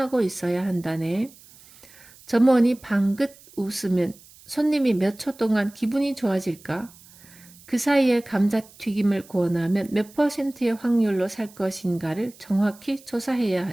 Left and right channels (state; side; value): noise; right; hiss, 24 dB below the sound